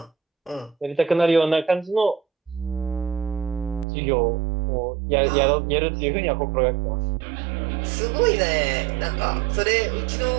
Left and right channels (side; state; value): left; drops out; at 3.9 s